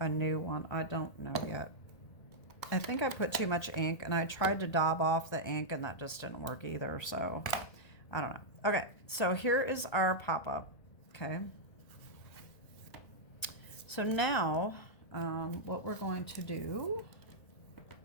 new one. I don't know yet. I think I put too much ink and I tried to daub off the ink and that just didn't work either, so I don't know. Okay, so here is our pop-up, okay? So now what we're going to do,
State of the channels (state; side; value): late; right; 1.3 ms